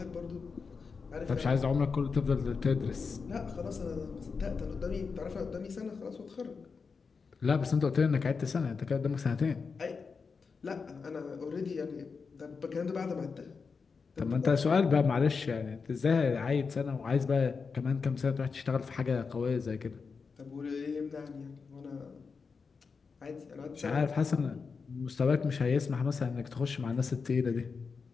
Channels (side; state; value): right; quieter; 5.1 dB